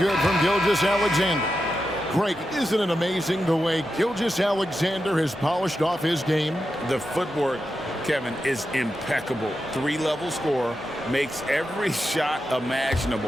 from Gilgeous-Alexander. Greg, isn't it amazing the way Gilgeous-Alexander has polished off his game? The footwork, Kevin, is impeccable. 3-level scorer, makes every shot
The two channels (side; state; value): both; normal; correlation 0.89